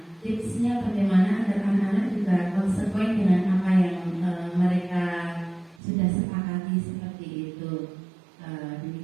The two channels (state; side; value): drops out; left; at 5.8 s